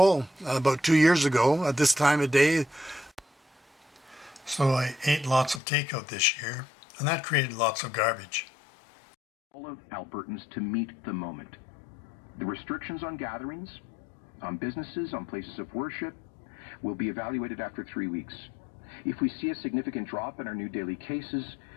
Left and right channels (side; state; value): right; drops out; at 5.6 s